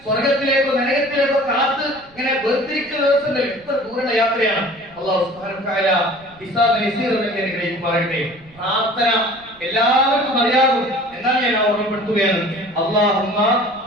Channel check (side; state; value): right; noise; rumble, 27 dB below the sound